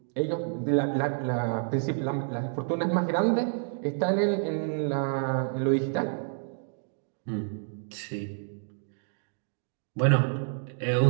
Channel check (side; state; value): left; silent; digital silence